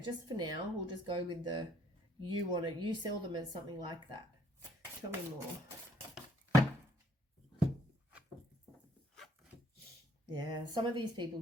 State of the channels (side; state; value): both; normal; correlation 0.64